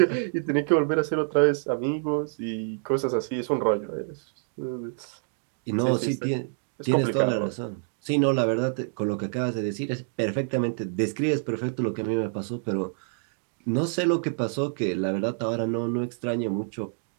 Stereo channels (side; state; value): left; silent; digital silence